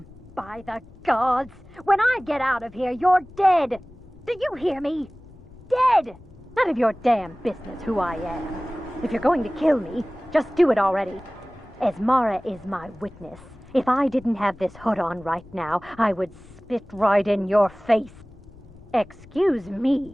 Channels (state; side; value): noise; left; rumble, 23 dB below the sound